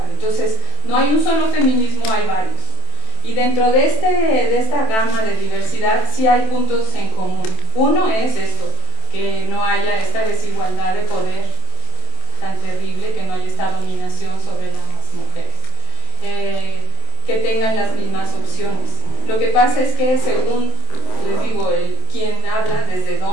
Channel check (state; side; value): late; right; 27 ms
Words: Entonces no hay un solo feminismo, hay varios. Y dentro de esta gama de diversidad sí hay puntos en común. Uno es esto, que no haya esta desigualdad de poder tan terrible, que no haya esta dominación sobre las mujeres, que tengan las mismas opciones. Lo que pasa es que según, les digo, quien habla desde